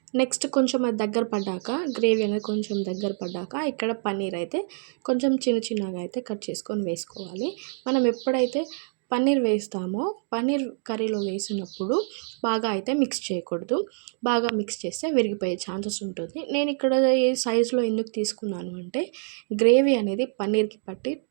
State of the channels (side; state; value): left; silent; 61 dB below the other